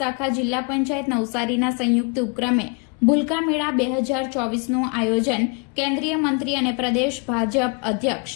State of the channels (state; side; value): quieter; right; 34.3 dB